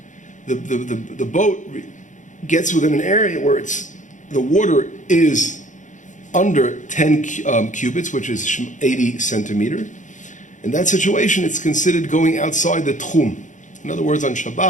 the boat gets within an area where the water is under 10 cubits, which is 80 centimeters, in that situation, it's considered going outside the tchum. In other words, on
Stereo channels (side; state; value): right; late; 0.36 ms